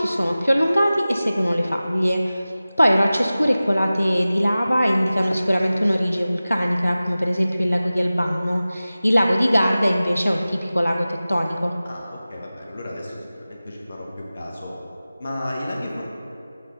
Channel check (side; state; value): both; inverted; correlation -0.97